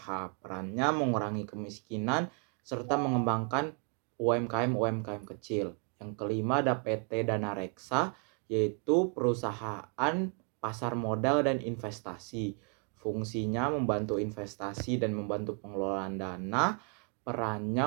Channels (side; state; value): left; quieter; 39.5 dB